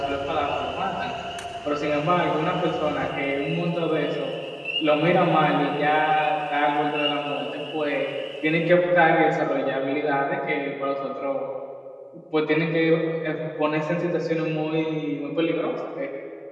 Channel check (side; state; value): both; identical; correlation 1.00